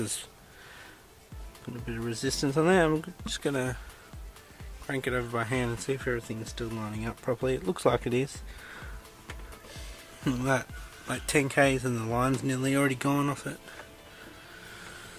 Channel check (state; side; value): identical; both; correlation 1.00